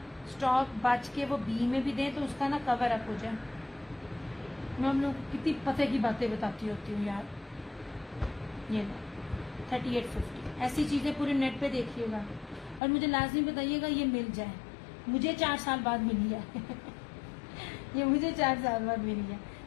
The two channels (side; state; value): right; drops out; at 12.8 s